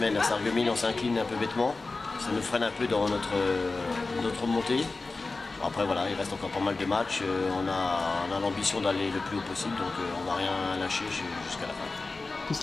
à Sarreguemines, on s'incline un peu bêtement. Ça nous freine un peu dans notre montée. Après voilà, il reste encore pas mal de matchs. On a l'ambition d'aller le plus haut possible, donc on ne va rien lâcher jusqu'à la fin. Qu'est-ce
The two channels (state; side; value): quieter; right; 3.6 dB